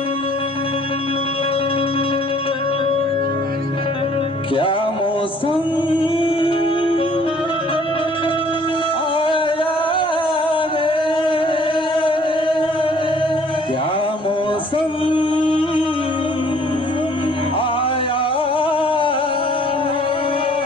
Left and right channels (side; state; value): right; noise; rumble, 29 dB below the sound